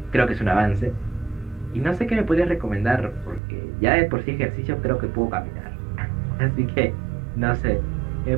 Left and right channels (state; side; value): drops out; left; at 3.4 s